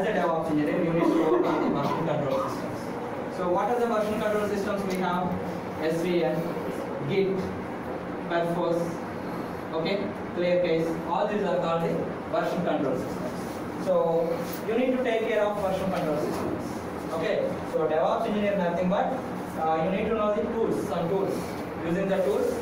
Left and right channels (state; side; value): identical; both; correlation 1.00